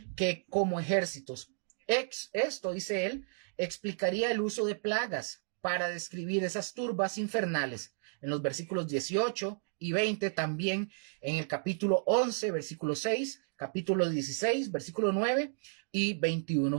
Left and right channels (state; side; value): silent; left; digital silence